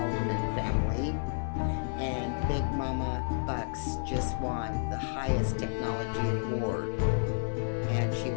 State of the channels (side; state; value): right; silent; 57 dB below the other